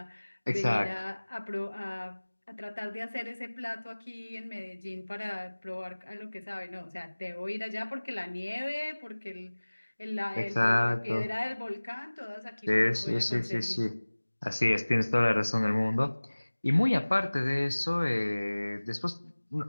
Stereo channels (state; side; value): inverted; both; correlation -1.00